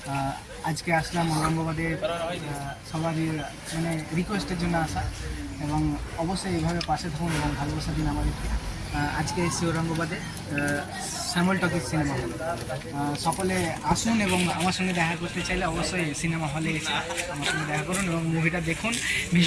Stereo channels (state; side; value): identical; both; correlation 1.00